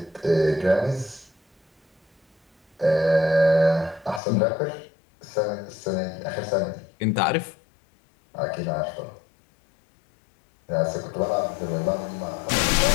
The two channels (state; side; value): drops out; right; at 4.2 s